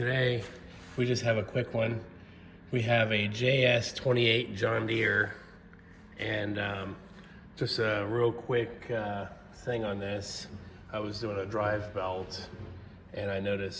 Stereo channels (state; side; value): identical; both; correlation 1.00